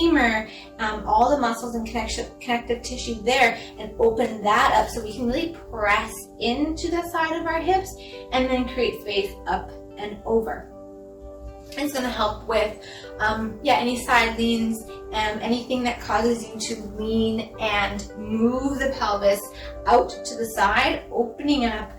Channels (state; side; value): identical; both; correlation 1.00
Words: all the muscles and connective tissue there, and open that up so we can really press into the side of our hips and then create space up and over. It's going to help with any side leans, anything that causes you to lean and move the pelvis out to the side. Opening up